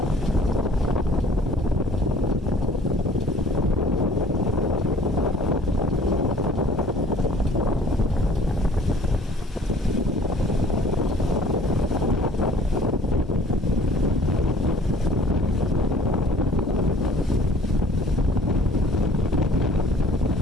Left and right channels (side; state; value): both; normal; correlation 0.53